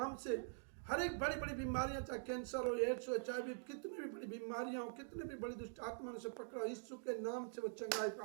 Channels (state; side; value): silent; left; digital silence